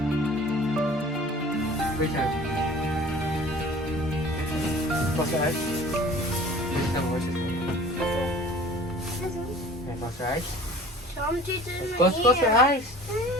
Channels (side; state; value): both; normal; correlation 0.46